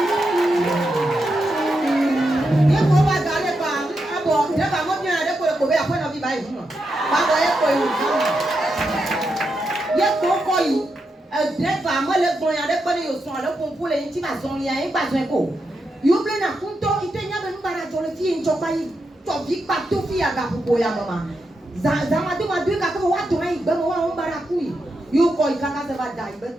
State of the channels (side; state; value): both; normal; correlation 0.85